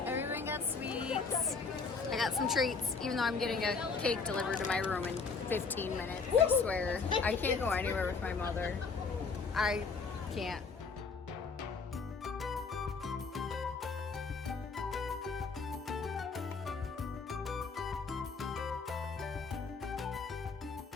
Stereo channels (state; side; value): quieter; right; 4.8 dB